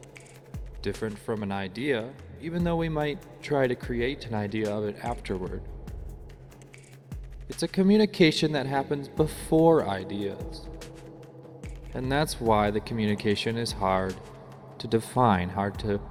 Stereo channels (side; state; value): both; identical; correlation 1.00